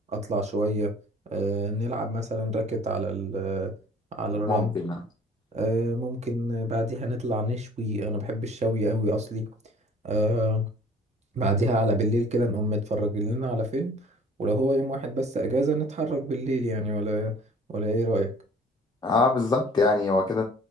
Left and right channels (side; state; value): both; normal; correlation 0.51